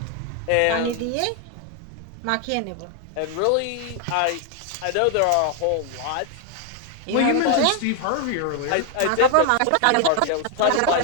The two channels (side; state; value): both; different; correlation 0.00